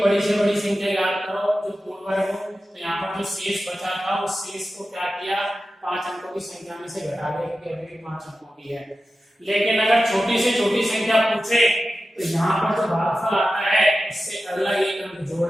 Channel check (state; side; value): normal; both; correlation 0.93